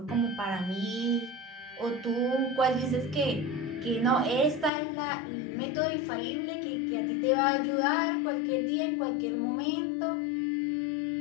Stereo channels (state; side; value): drops out; right; at 4.7 s